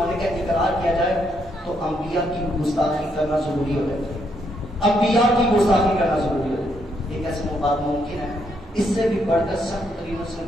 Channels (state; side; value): normal; both; correlation 0.76